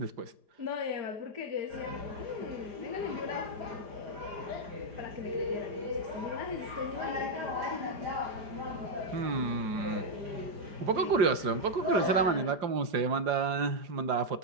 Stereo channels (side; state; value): left; late; 4.9 ms